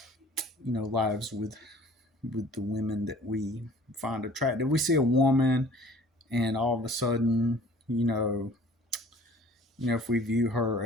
lives with the women that we find attractive. We see a woman, and all of a sudden, if we view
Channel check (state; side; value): normal; both; correlation 0.50